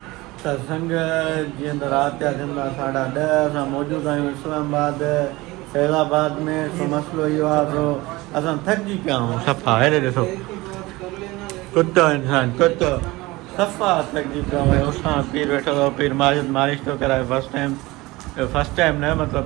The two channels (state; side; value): quieter; left; 20.9 dB